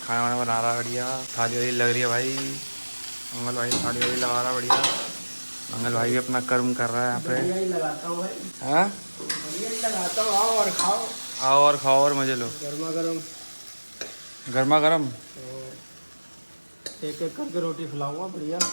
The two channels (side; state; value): both; inverted; correlation -1.00